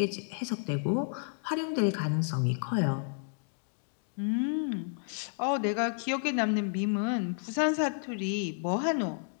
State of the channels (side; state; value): right; silent; digital silence